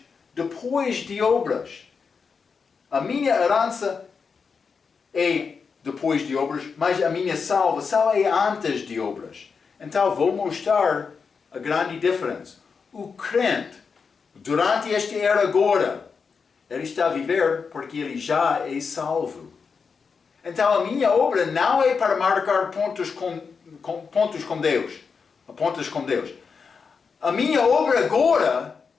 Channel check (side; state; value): right; quieter; 5.5 dB